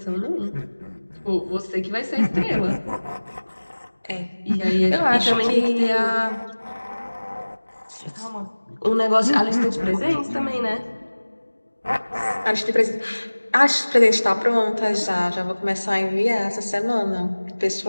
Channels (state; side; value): inverted; both; correlation -1.00